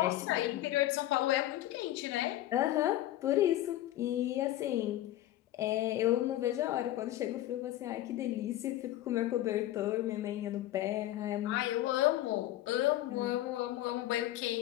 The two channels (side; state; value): right; quieter; 14.4 dB